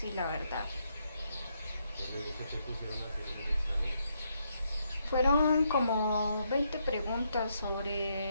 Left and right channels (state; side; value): inverted; both; correlation -0.77